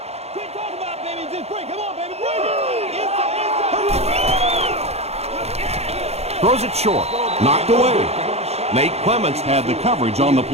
Throws it short. Knocked away. Nate Clements had the coverage on the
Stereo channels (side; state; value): left; late; 0.31 ms